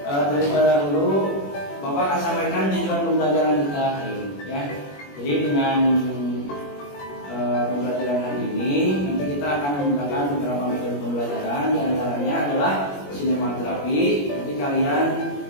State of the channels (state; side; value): late; right; 21 ms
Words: daripada dulu Bapak akan sampaikan tujuan pembelajaran kita hari ini, ya. Jadi dengan pembelajaran hari ini, nanti kita akan menggunakan beberapa metode pembelajaran, di antaranya adalah sinematerapi. Nanti kalian